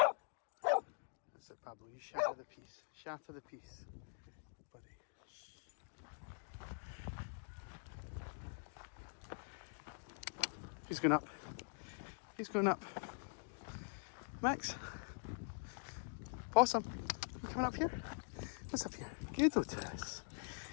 it, Pablo. You shatter the piece. Shatter the piece, buddy. He's going up. He's going up. Max. Possum. You coming up here? What's up here? Good, Otis.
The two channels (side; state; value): right; silent; digital silence